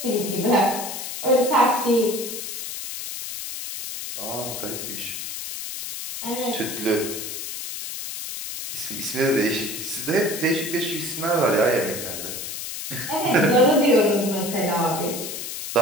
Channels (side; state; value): left; noise; hiss, 7 dB below the sound